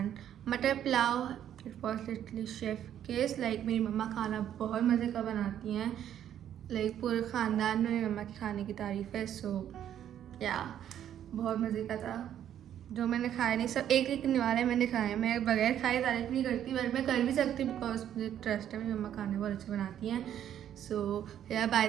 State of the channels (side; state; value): left; quieter; 10.4 dB